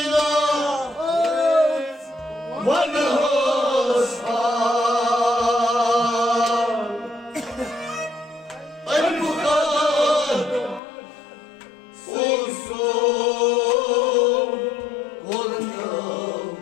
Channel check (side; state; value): right; drops out; at 10.8 s